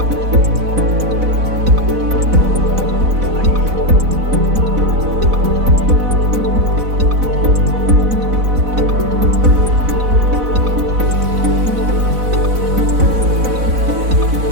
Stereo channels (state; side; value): late; left; 4.0 ms